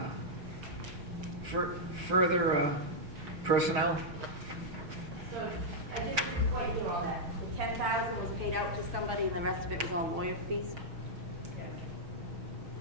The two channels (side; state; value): left; late; 6.4 ms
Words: Further personnel? So I think this is what you all that. 10,000 was paid out to somebody and the rest of it was all lawyer fees.